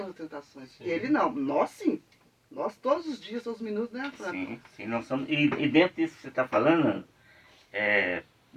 tentações. Sim. E ele não. Nós sim. Nós todos os dias, todos os minutos, né, Fran? Sim, nós somos. E dentro disso que você está falando,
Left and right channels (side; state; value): both; identical; correlation 1.00